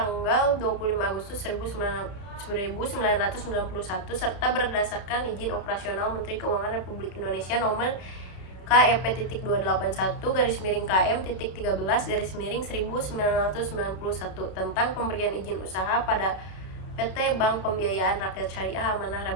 25 Agustus 1991 serta berdasarkan izin operasional Menteri Keuangan Republik Indonesia nomor KEP-281-KM-13-1991 tentang pemberian izin usaha pada PT Bank Pembiayaan Rakyat Syariah Amanah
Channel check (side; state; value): right; late; 32 ms